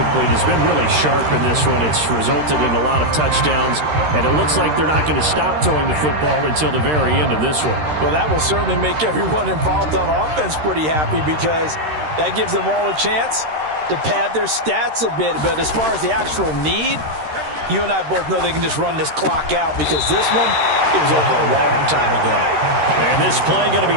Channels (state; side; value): late; left; 13 ms